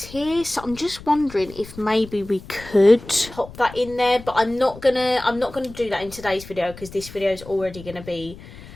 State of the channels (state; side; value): noise; left; rumble, 17 dB below the sound